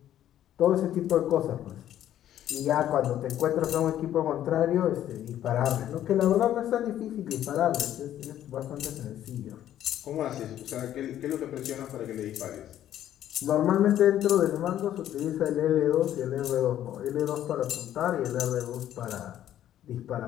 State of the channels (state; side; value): quieter; right; 11.7 dB